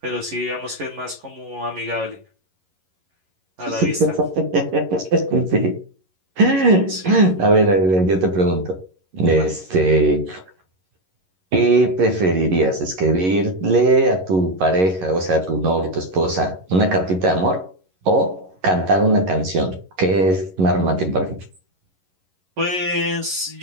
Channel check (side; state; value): left; late; 11 ms